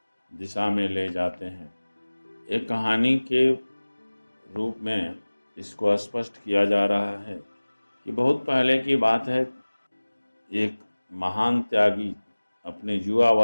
दिशा में ले जाते हैं। एक कहानी के रूप में इसको स्पष्ट किया जा रहा है कि बहुत पहले की बात है। एक महान त्यागी अपने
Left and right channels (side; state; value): both; inverted; correlation -1.00